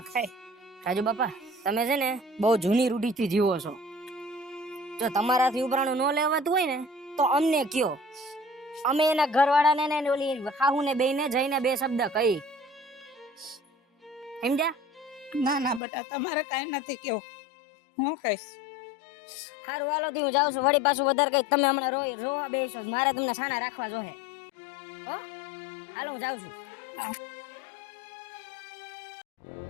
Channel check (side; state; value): right; drops out; at 15.8 s